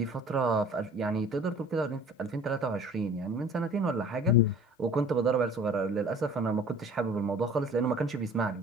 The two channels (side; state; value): both; normal; correlation 0.46